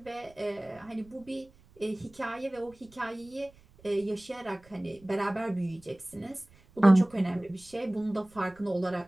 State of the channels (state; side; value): noise; right; rumble, 26 dB below the sound